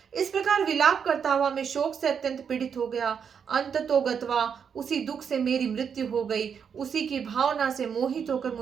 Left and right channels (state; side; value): quieter; left; 7.1 dB